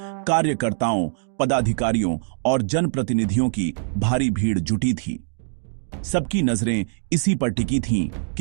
कार्यकर्ताओं, पदाधिकारियों और जनप्रतिनिधियों की भारी भीड़ जुटी थी। सबकी नजरें इसी पर टिकी थीं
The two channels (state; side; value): silent; left; digital silence